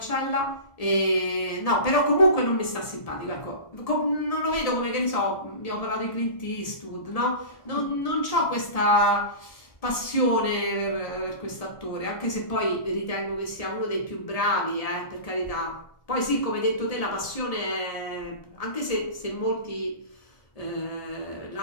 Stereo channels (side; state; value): right; late; 1.7 ms